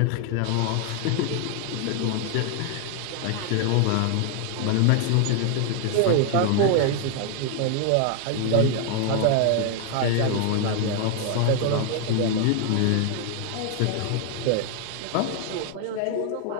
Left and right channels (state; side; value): different; both; correlation 0.00